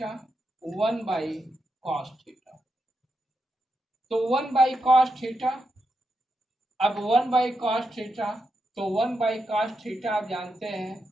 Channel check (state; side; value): normal; both; correlation 0.85